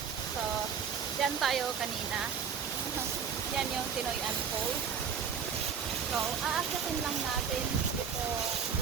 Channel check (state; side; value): quieter; left; 6.9 dB